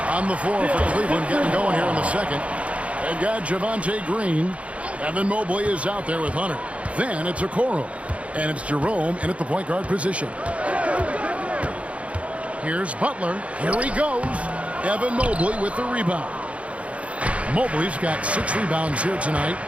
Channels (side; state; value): left; late; 0.063 ms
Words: On the floor for Cleveland, getting going here in the second. They've got Javonte Green. Evan Mobley is out there with Hunter. Then it's Okoro. And it's Jerome in at the point guard position. Here's Butler. Here he goes. Evan Mobley with the rebound. Mobley's got 6 rebounds here tonight.